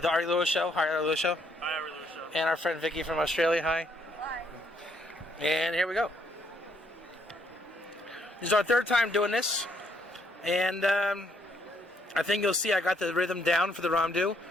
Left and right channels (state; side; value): normal; both; correlation 0.70